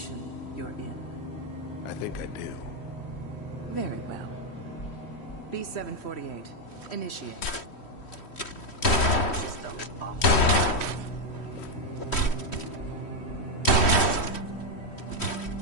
you're in. I think I do. Very well. B-748, initiate. System off.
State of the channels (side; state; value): right; late; 3.1 ms